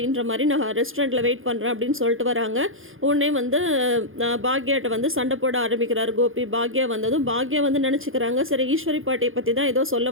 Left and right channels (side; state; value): left; late; 0.59 ms